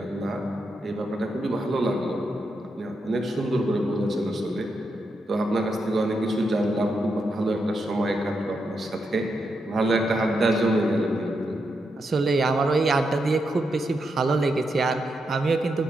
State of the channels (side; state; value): both; normal; correlation 0.84